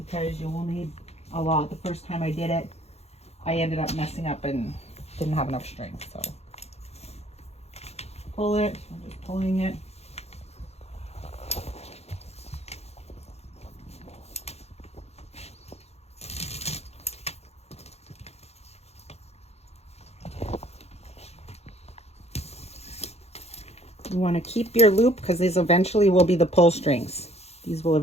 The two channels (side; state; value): right; late; 0.31 ms